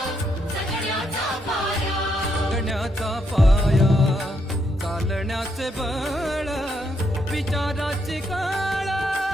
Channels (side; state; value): both; normal; correlation 0.77